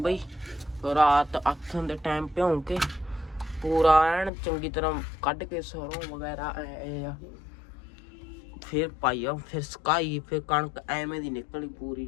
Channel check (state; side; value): drops out; right; at 4.3 s